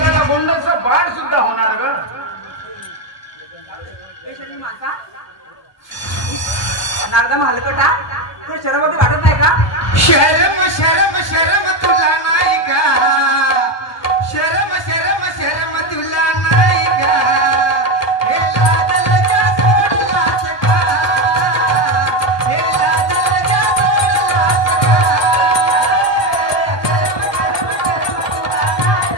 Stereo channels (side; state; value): right; late; 1.2 ms